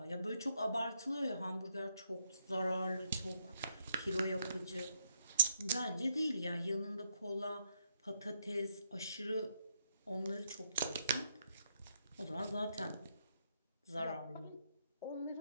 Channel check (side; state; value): both; inverted; correlation -0.76